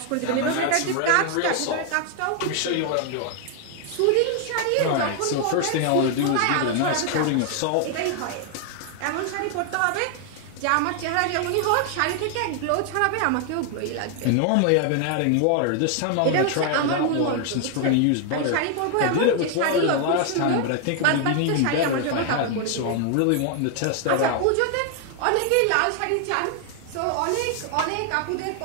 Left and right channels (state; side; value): different; both; correlation 0.00